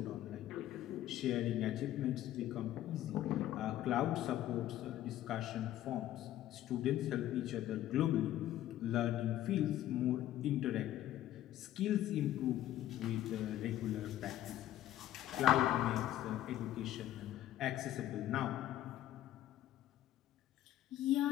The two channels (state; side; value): quieter; right; 13.0 dB